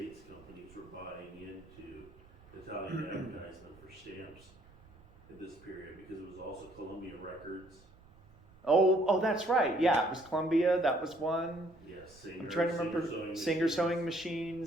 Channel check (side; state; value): right; noise; rumble, 25 dB below the sound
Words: companies were buying into Italian advertisement for stamps in this period because it was also Columbia Records. Oh, that's right. Yeah, it was Columbia. That was one. Yes, Singer. I'm trying to remember Singer sewing